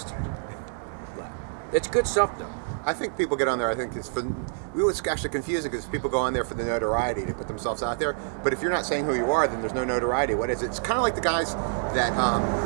But it's good stuff, though. I think people get on there, I think it's for, it's actually confusing because people go on there for the notoriety to put themselves out there, but if you're not saying who you are, then there's no notoriety. What is it? It's kind of like the guys that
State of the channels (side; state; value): left; silent; digital silence